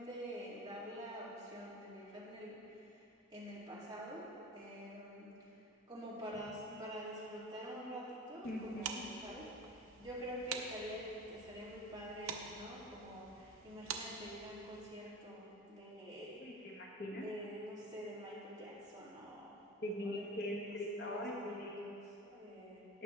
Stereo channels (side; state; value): both; normal; correlation 0.33